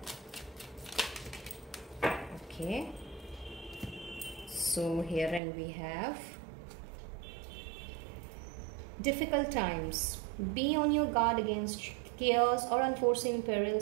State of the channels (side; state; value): left; drops out; at 5.4 s